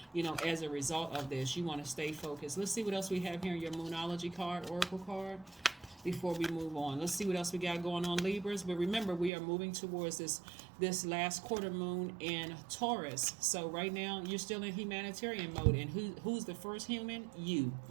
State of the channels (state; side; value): drops out; left; at 9.3 s